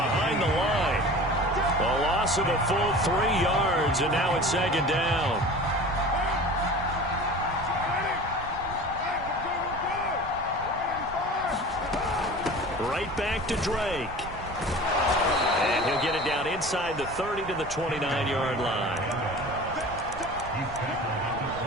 the line. A loss of a full 3 yards, and now it's 2nd down. Right back to Drake. And he'll get it down inside the 30 to the 29-yard line.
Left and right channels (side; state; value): right; noise; rumble, 13 dB below the sound